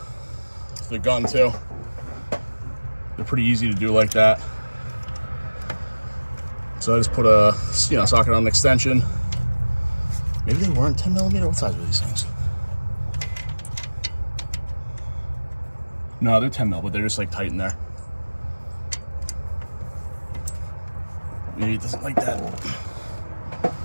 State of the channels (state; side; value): inverted; both; correlation -1.00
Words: gun too. They're pretty easy to do like that. So I just put a socket on an extension. Maybe they weren't 10 millimeter. What size were these things? No, they're 10 mil, but they're just like tight in there. Maybe it doesn't like that